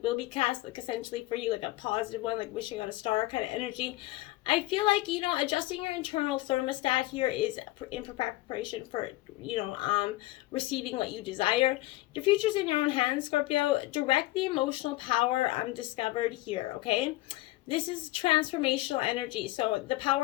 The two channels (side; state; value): right; quieter; 18.6 dB